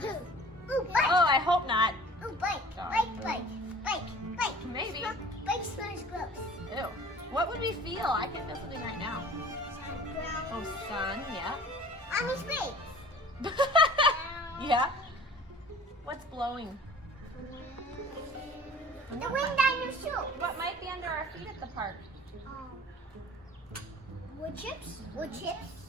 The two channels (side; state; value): both; normal; correlation 0.45